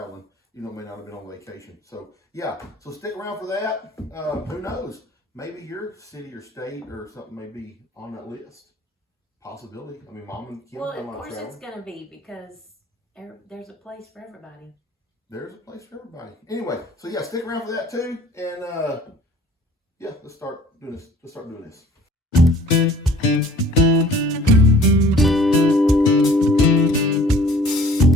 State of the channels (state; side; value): normal; both; correlation 0.51